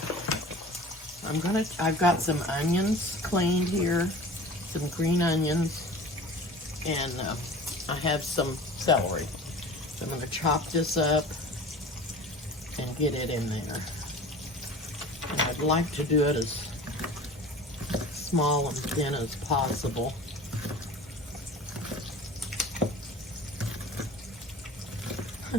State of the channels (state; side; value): normal; both; correlation 0.40